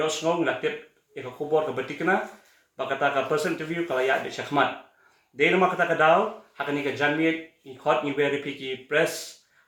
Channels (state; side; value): identical; both; correlation 1.00